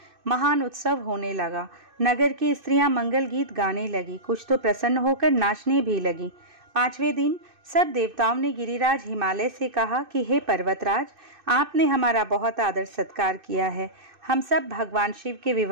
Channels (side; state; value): left; late; 2.6 ms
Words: महान उत्सव होने लगा। नगर की स्त्रियां मंगल गीत गाने लगी, कुछ तो प्रसन्न होकर नाचने भी लगी। पांचवें दिन सब देवताओं ने गिरिराज हिमालय से कहा कि हे पर्वतराज, आपने हमारा बहुत आदर सत्कार किया है। हम सब भगवान शिव के